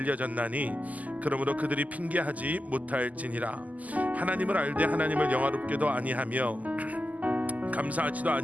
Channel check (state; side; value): late; left; 0.077 ms